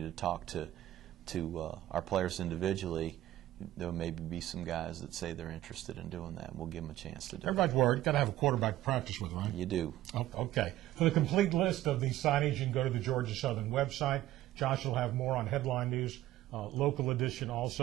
to talk to our players individually, there maybe be some guys that say they're interested in doing that. We'll give them a chance to do it. Everybody's worried. Got to have a quarterback to practice with, right? You do. Oh, okay. For the complete list of these signings, you can go to the Georgia Southern website. Josh will have more on Headline News, local edition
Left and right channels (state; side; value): quieter; left; 14.4 dB